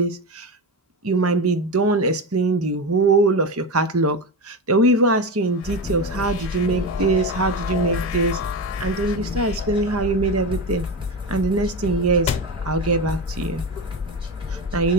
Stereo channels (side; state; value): both; normal; correlation 0.19